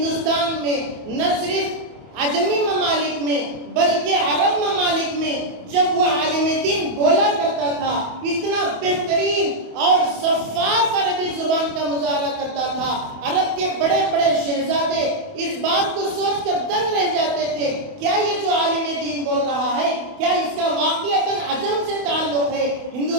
میں، نہ صرف عجمی ممالک میں، بلکہ عرب ممالک میں جب وہ عالم دین بولا کرتا تھا، اتنا بہترین اور شفاف عربی زبان کا مظاہرہ کرتا تھا، عرب کے بڑے بڑے شہزادے اس بات کو سوچ کر دنگ رہ جاتے تھے، کیا یہ جو عالم دین بول رہا ہے، کیا اس کا واقعتاً عجم سے تعلق ہے،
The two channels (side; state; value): left; late; 28 ms